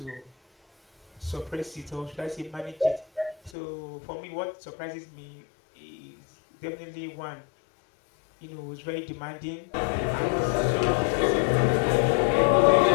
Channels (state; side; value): drops out; right; at 3.5 s